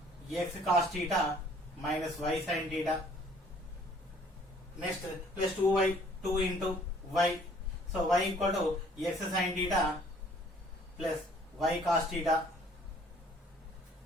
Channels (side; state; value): both; normal; correlation 0.58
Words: x cos theta minus y sin theta. Next plus 2y 2 into y. So y equal to x sin theta plus y cos theta